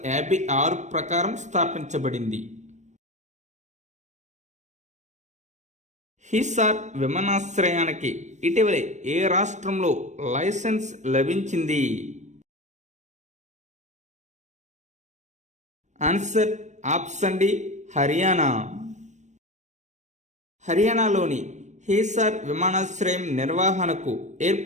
ప్రకారం స్థాపించబడింది. హిసార్ విమానాశ్రయానికి ఇటీవలే ఏ రాష్ట్రంలో లైసెన్స్ లభించింది? Answer option D Haryana. హర్యానాలోని హిసార్ విమానాశ్రయం నిర్వహణకు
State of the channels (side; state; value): left; late; 0.34 ms